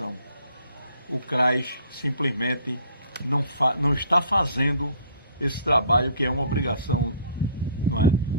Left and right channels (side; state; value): both; inverted; correlation -0.56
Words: O CRAS simplesmente não está fazendo esse trabalho, que é uma obrigação, não é?